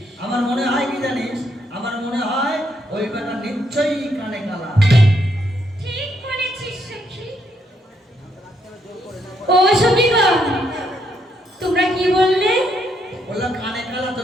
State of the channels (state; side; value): normal; both; correlation 0.75